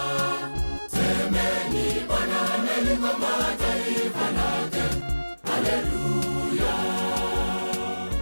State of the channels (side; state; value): both; inverted; correlation -1.00